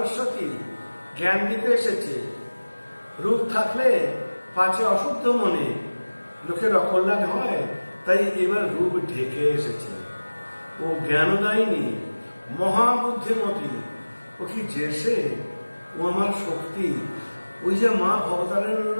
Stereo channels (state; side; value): inverted; both; correlation -1.00